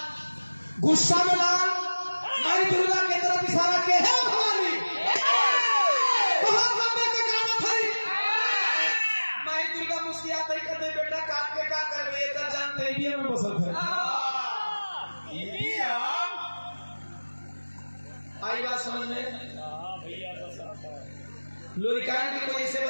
गुस्सा में लाल माई दुर्गा की तरफ इशारा के है भवानी बहुत लंबे का गाना था। माई दुर्गा मुस्कुराते ही कहते बेटा काट के क्या करबे, एकर जान तेरी में बसल है। आई बात समझ में? लोरिकान की कोई ऐसे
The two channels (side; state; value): both; inverted; correlation -1.00